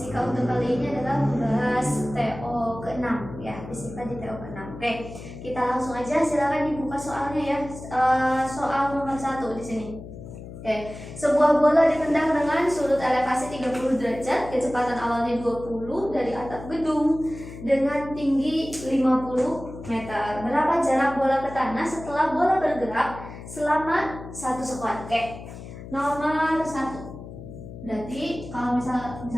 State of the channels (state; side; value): noise; left; hum, 13 dB below the sound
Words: untuk kali ini adalah membahas TO ke-6 ya, fisika di TO ke-6. Oke, kita langsung aja, silakan dibuka soalnya ya. Soal nomor 1 di sini. Oke, sebuah bola ditendang dengan sudut elevasi 30 derajat, kecepatan awalnya 20 dari atap gedung dengan tinggi 50 meter. Berapa jarak bola ke tanah setelah bola bergerak selama 1 sekon? Oke, nomor 1. Berarti kalau